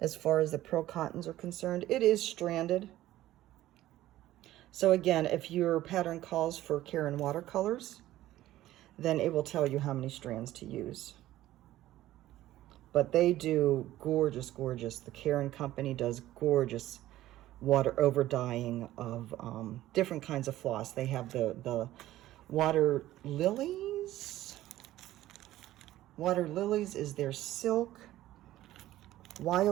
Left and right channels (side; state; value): left; quieter; 14.8 dB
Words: far as the pearl cottons are concerned. It is stranded. So again, if your pattern calls for Caron watercolors, then it will tell you how many strands to use. But they do gorgeous, gorgeous. The Caron company does gorgeous water overdying of different kinds of floss. They have the water lilies. Water lilies is their silk.